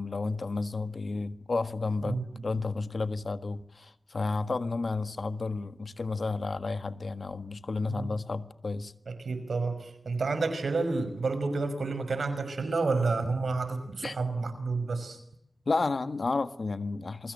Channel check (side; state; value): both; normal; correlation 0.91